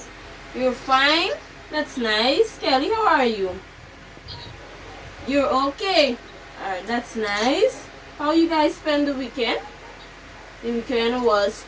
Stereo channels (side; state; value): both; identical; correlation 1.00